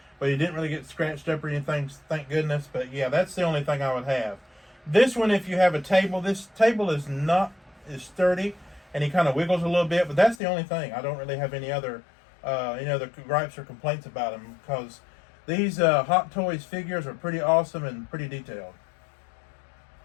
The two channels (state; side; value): drops out; right; at 10.4 s